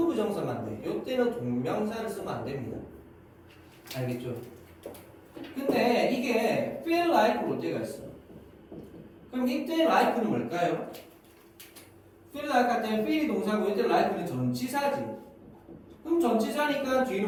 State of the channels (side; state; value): both; identical; correlation 1.00